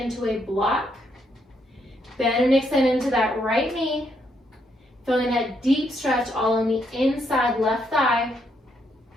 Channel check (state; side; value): normal; both; correlation 0.75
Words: to a block. Bend and extend into that right knee. Feeling that deep stretch all on the inside left thigh.